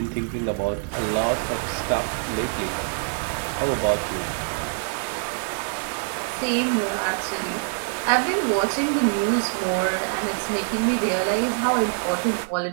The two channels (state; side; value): silent; left; 60 dB below the other